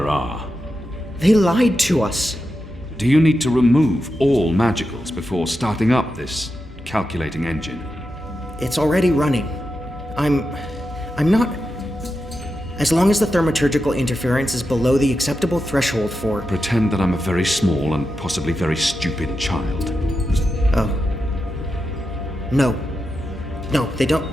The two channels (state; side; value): normal; both; correlation 0.89